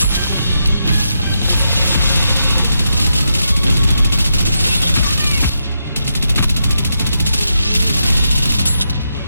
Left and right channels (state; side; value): inverted; both; correlation -0.83